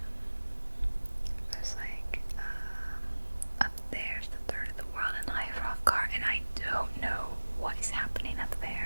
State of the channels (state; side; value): inverted; both; correlation -1.00